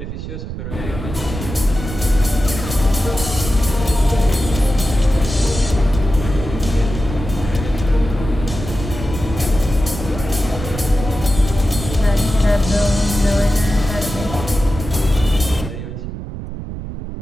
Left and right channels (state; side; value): noise; right; rumble, 8 dB below the sound